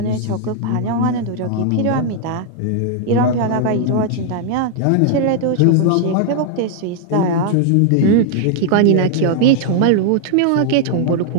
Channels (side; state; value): both; different; correlation 0.00